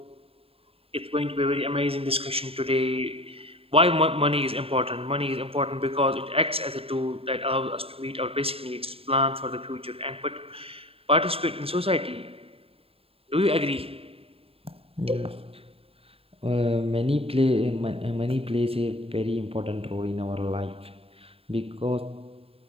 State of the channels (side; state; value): left; late; 0.27 ms